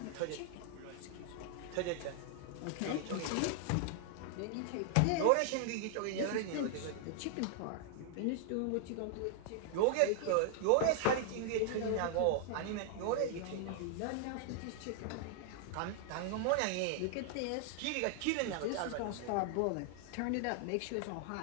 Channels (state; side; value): different; both; correlation 0.00